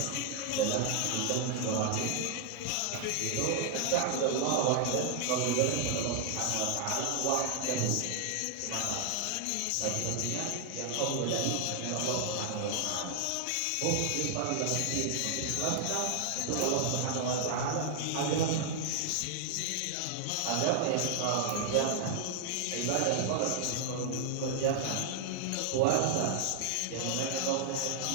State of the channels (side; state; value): both; different; correlation 0.00